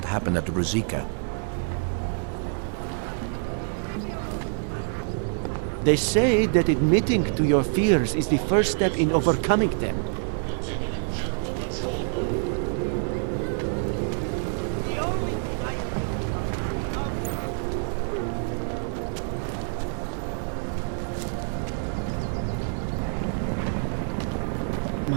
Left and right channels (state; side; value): silent; left; 59 dB below the other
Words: happened at the Ruzicka. They say that admitting to your fears is the first step in overcoming them.